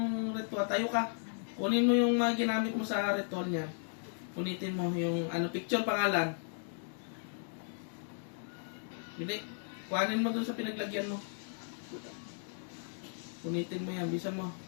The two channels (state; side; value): silent; right; digital silence